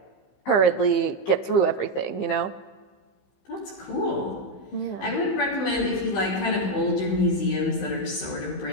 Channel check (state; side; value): late; right; 15 ms